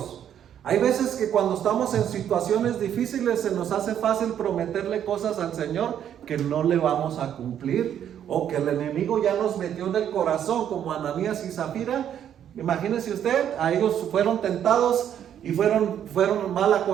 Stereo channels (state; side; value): quieter; left; 9.7 dB